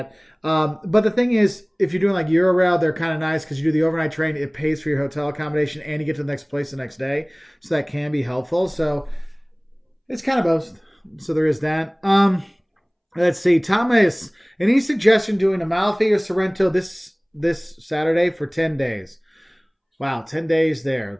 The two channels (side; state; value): both; identical; correlation 1.00